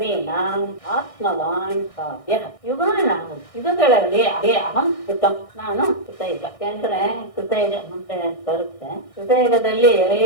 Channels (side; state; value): right; late; 1.6 ms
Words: ಆತ್ಮವಾನ್ ಕಾವ್ಯಃ. ಯುಗಾನಾಂ ಯುಗಗಳಲ್ಲಿ ಅಹಂ ಕೃತಂ, ನಾನು ಕೃತಯುಗ. ಯಾಕಂದ್ರೆ ಕೃತಯುಗ ಮುಂದೆ ಬರುತ್ತೆ. ಕೃತಯುಗದಲ್ಲಿ